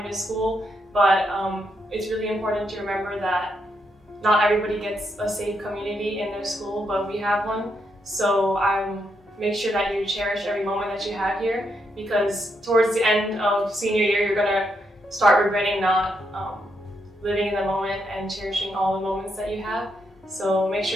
to school, but it's really important to remember that not everybody gets a safe community in their school, but we have one. So make sure that you cherish every moment that you have here, because towards the end of senior year, you're gonna start regretting not living in the moment and cherishing all the moments that you have. So make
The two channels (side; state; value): both; normal; correlation 0.79